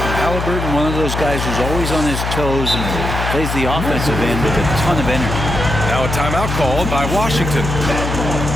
Halliburton, one of those guys who's always on his toes and plays the offensive end with a ton of energy. Now a timeout called by Washington.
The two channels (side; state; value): left; noise; hum, 3 dB below the sound